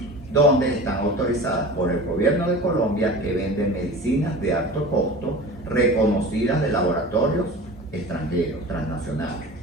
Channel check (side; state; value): both; normal; correlation 0.36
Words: donde están autorizadas por el gobierno de Colombia, que venden medicinas de alto costo, reconocidas de laboratorios extranjeros, transnacionales,